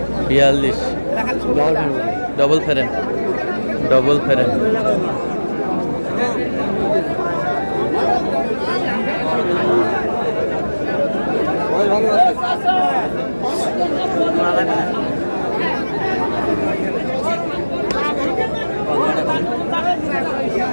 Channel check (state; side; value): inverted; both; correlation -1.00